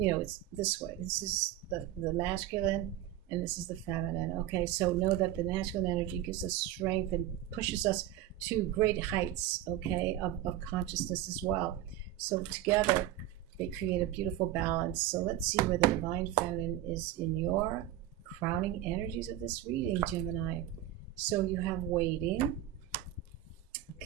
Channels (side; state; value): left; quieter; 12.9 dB